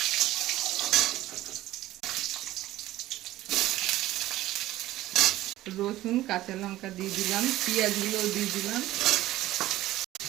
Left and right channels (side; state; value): left; quieter; 15.6 dB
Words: রসুন কাঁচা লঙ্কা দিয়ে দিলাম, পেঁয়াজগুলো দিয়ে দিলাম,